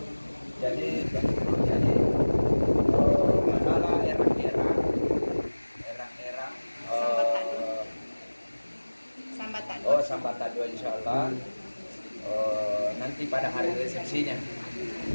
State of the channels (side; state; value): both; inverted; correlation -1.00